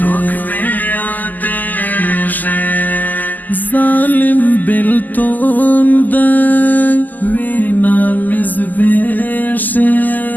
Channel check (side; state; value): right; late; 0.084 ms